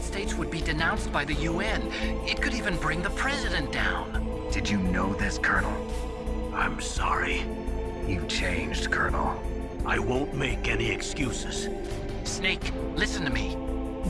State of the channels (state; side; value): identical; both; correlation 1.00